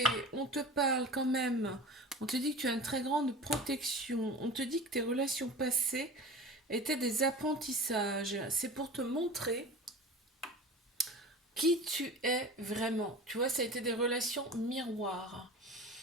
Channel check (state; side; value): normal; both; correlation 0.36